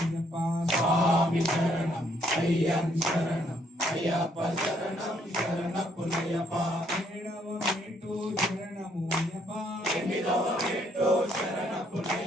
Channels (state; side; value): normal; both; correlation 0.69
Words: స్వామి శరణం అయ్యన్ శరణం అయ్యప్ప శరణం శరణపుణ్యప్ప ఏడవ మెట్టు శరణముయ్యప్ప ఎనిమిదవ మెట్టు